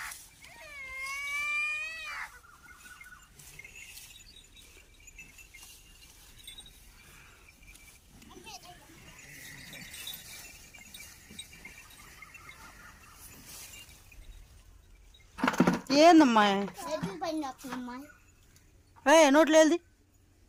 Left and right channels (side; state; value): both; identical; correlation 1.00